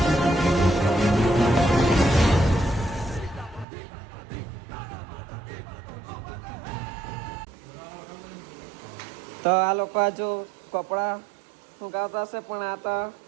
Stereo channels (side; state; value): left; drops out; at 3.7 s